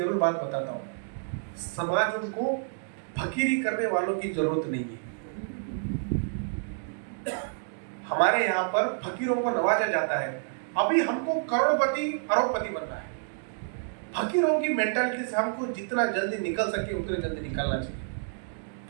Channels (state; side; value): silent; left; digital silence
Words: बात बताता हूँ, समाज उनको फकीरी करने वालों की जरूरत नहीं है। हमारे यहाँ पर फकीरों को नवाजा जाता है। अभी हमको करोड़पति अरबपति बनना है। फकीरों की मेंटालिटी से हमको जितना जल्दी निकल सके उतने जल्दी निकलना चाहिए।